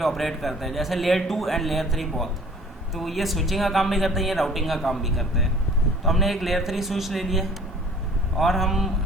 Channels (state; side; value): normal; both; correlation 0.50